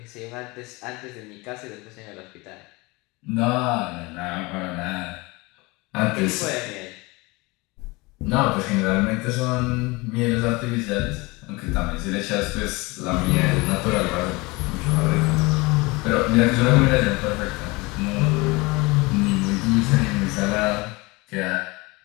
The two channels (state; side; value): quieter; right; 24.4 dB